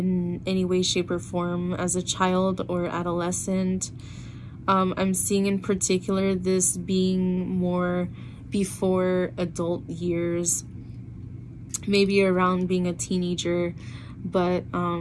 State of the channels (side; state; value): both; identical; correlation 1.00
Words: any way, shape, or form as a child or adolescent. I'm seeing in particular this being more before adult years, maybe around being a teenager, but